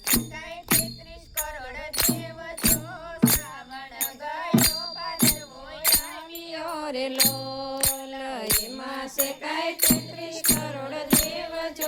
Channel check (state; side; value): identical; both; correlation 1.00